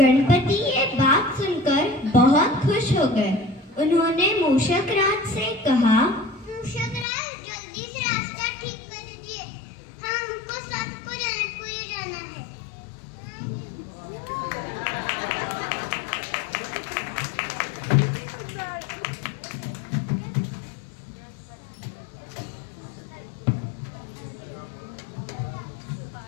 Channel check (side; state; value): right; drops out; at 7.1 s